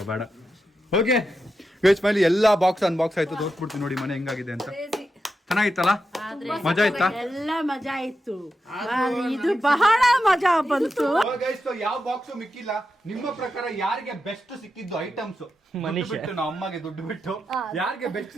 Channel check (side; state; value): both; normal; correlation 0.88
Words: ಬೇಡ ಓಕೆ ಗೈಸ್ ಫೈನಲಿ ಎಲ್ಲಾ ಬಾಕ್ಸ್ ಅನ್ಬಾಕ್ಸ್ ಆಯ್ತು ತೋರಿಸ್ಬಿಡ್ತೀನಿ ನೋಡಿ ಮನೆ ಹೆಂಗಾಗಿದೆ ಅಂತ Crazy. ಚೆನ್ನಾಗಿತ್ತಲ್ಲ ಮಜಾ ಆಯ್ತಾ ಎಲ್ಲ ಮಜಾ ಇತ್ತು ಇದು ಬಹಳ ಮಜಾ ಬಂತು. ಗೈಸ್ ಯಾವ ಬಾಕ್ಸ್ ಮಿಕ್ಕಿಲ್ಲ ನಿಮ್ಮ ಪ್ರಕಾರ ಯಾರಿಗೆ ಬೆಸ್ಟ್ ಸಿಕ್ಕಿದ್ದು ಐಟಮ್ಸ್ ಮನೀಶ್. ಬಿಟ್ಟು ನಮ್ಮ ಅಮ್ಮಗೆ ದುಡ್ಡು ಬಿಟ್ಟು ಯಾರಿಗೆ ಬೆಸ್ಟ್